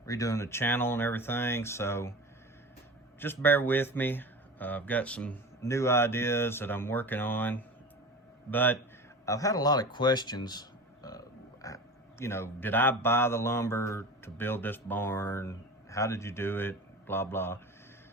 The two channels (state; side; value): normal; both; correlation 0.32